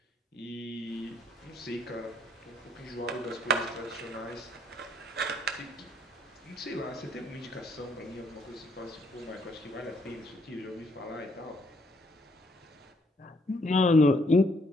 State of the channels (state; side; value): normal; both; correlation 0.69